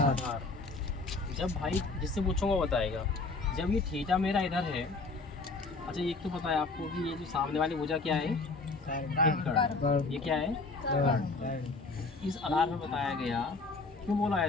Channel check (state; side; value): quieter; right; 3.8 dB